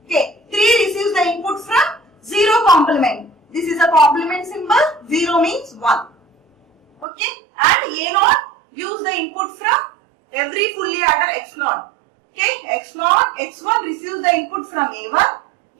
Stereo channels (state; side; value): drops out; left; at 7.1 s